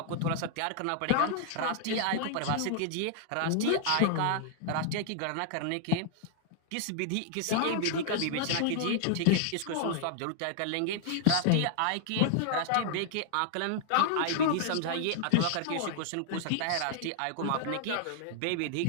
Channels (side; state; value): both; different; correlation -0.01